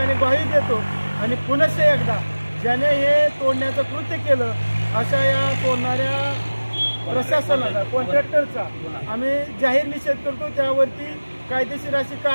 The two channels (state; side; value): inverted; both; correlation -1.00